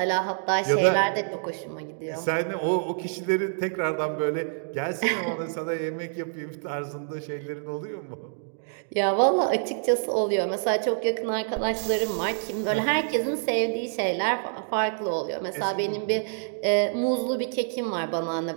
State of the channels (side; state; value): left; silent; digital silence